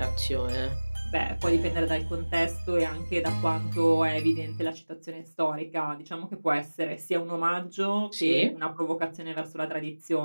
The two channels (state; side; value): inverted; both; correlation -1.00